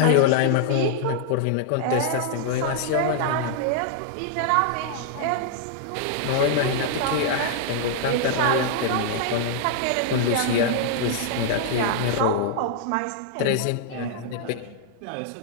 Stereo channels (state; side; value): different; both; correlation -0.01